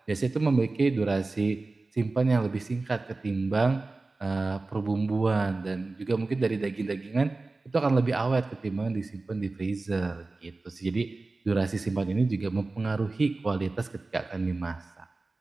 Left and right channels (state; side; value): quieter; left; 3.4 dB